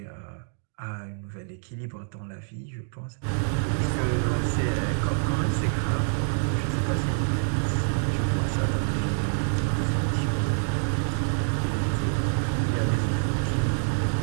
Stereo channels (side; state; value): left; silent; digital silence